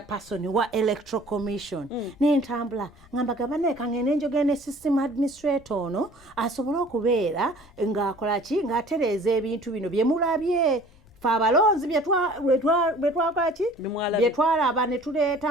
wa Electoral Commission n'entambula ngamba gabane kangene njogene system administrator ono asobola okubeera ng'akola ki ng'atereeza ebintu bino bye mulabye fe abalonzi byetwalaba ne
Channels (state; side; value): noise; left; rumble, 27 dB below the sound